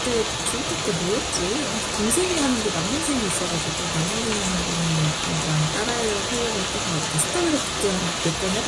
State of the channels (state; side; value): identical; both; correlation 1.00